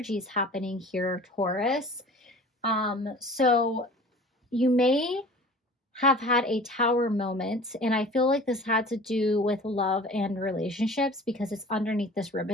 happening here, Taurus. So you may have had a Tower moment, and I feel like this had to do with love and relationships because it's underneath this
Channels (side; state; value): both; normal; correlation 0.43